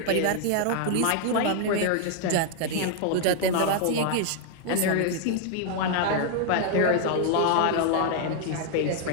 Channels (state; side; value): different; both; correlation 0.00